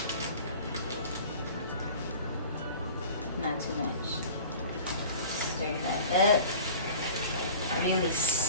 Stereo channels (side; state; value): both; inverted; correlation -0.41